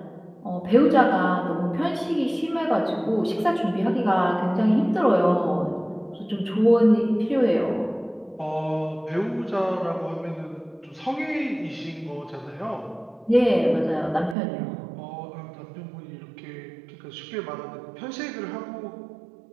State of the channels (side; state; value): left; drops out; at 14.4 s